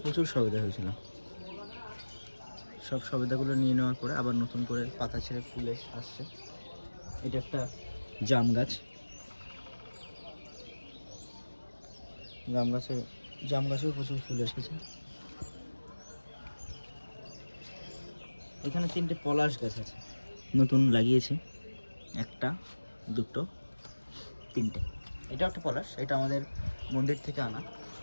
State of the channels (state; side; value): inverted; both; correlation -1.00